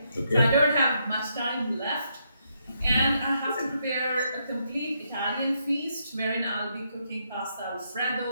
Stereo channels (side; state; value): both; inverted; correlation -0.77